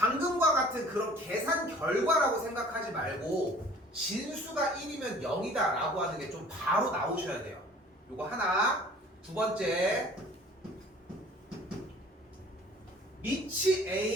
같은 그런 계산 결과라고 생각하지 말고 진수가 1이면 0이다 라고 하는 게 좀 바로 나오셔야 돼요. 요거 하나. 두 번째 밑이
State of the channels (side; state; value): both; normal; correlation 0.49